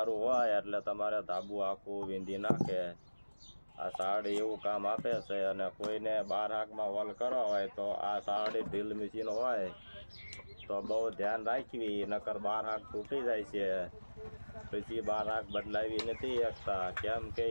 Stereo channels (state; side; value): inverted; both; correlation -1.00